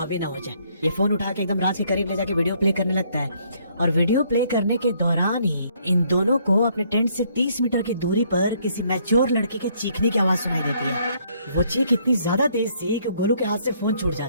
ना हो जाए। ये फोन उठा के एकदम राज के करीब ले जाके वीडियो प्ले करने लगता है और वीडियो प्ले करने के दौरान ही इन दोनों को अपने टेंट से 30 मीटर की दूरी पर किसी मैच्योर लड़के के चीखने की आवाज सुनाई देती है। वो चीख इतनी ज्यादा तेज थी कि गोलू के हाथ से फोन छूट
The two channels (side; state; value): both; inverted; correlation -0.67